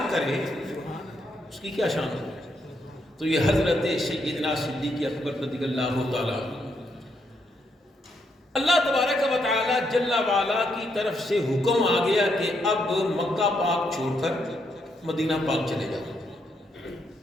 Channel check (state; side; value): normal; both; correlation 0.77